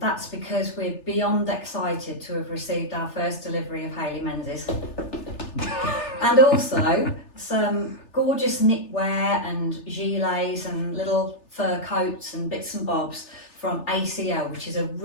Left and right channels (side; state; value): right; late; 3.3 ms